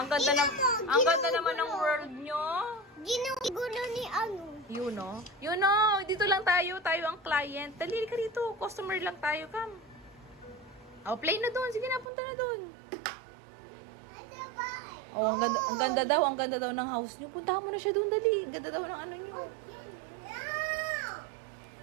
ganda naman ng world nyo. Ginugulo ni ano. You know, dito lang tayo ang client. Dali ka dito, customer lang tayo, come. Oh, play na doon. Sige na, punta na doon. Oh, ang ganda daw ng house nyo. Puntahan mo na siya doon, dali. Ang ganda daw ng ano nyo.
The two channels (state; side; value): drops out; left; at 12.1 s